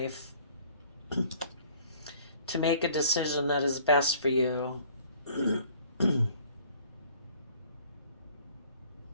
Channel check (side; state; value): both; inverted; correlation -0.54